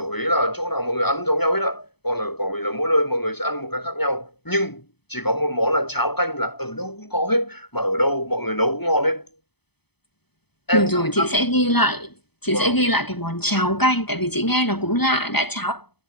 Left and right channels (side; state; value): right; late; 0.98 ms